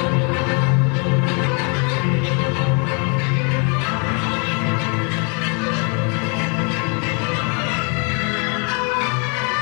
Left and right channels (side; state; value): right; quieter; 36.2 dB